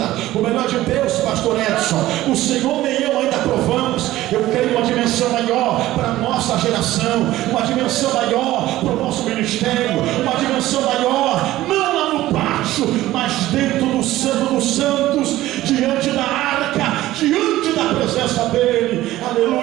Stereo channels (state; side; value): quieter; left; 15.6 dB